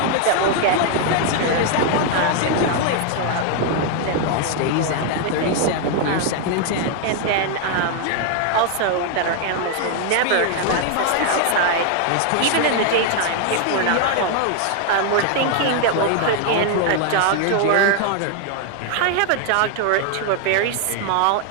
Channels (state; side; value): different; both; correlation 0.00